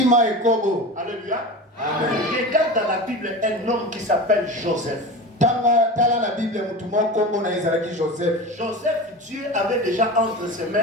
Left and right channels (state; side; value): normal; both; correlation 0.29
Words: ekobo. Alléluia. Amen. Regarde dans la Bible un homme qui s'appelle Joseph. Tala la Bible mutumo kombo na ezalaki Joseph. Joseph, Dieu avait déjà entre ses